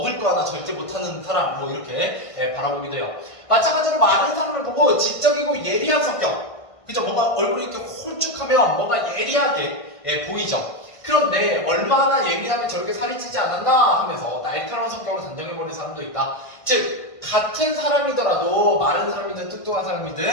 거 하나 절제 못하는 사람, 뭐 이렇게 바라보기도 해요. 마찬가지로 많은 사람을 보고 지적이고 예리한 성격. 그죠? 뭔가 얼굴이 이렇게 홀쭉하면 뭔가 예리하게 보이죠? 그런데 얼마나 예민하면 저렇게 살이 찌지 않았나 하면서 날카로운 성격으로 단정해버리는 사람도 있다. 즉, 같은 사람이더라도 마른 사람이든 뚱뚱한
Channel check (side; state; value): right; late; 1.5 ms